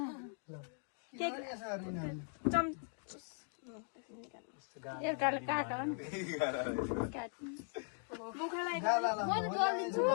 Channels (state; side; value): silent; right; 51 dB below the other